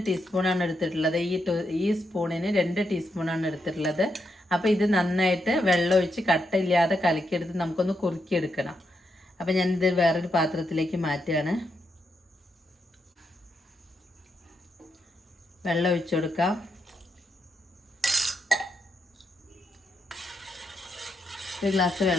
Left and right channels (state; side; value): normal; both; correlation 0.82